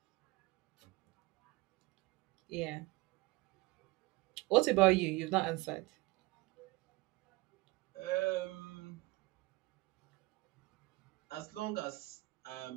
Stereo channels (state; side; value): quieter; left; 22.0 dB